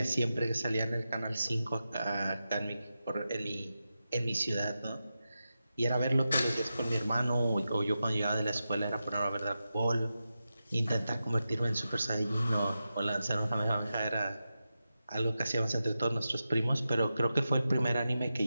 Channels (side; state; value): both; inverted; correlation -0.91